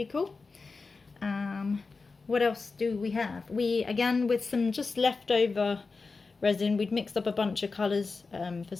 cool. What else do we have? We, again, with some just leftover resin, we'd mixed up a bunch of colours for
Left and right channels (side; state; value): right; quieter; 4.2 dB